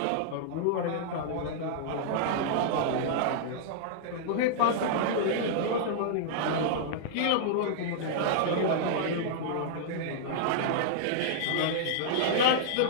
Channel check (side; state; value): both; different; correlation -0.01